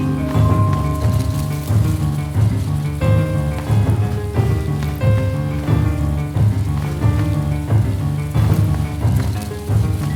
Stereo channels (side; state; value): both; identical; correlation 1.00